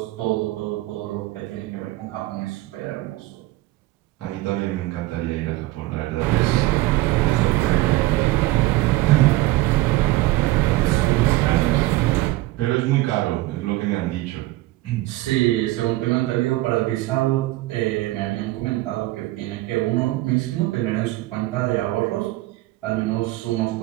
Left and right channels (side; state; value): left; quieter; 18.1 dB